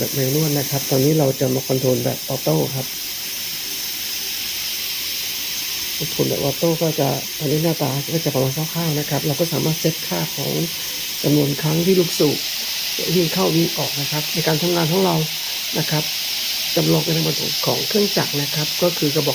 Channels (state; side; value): identical; both; correlation 1.00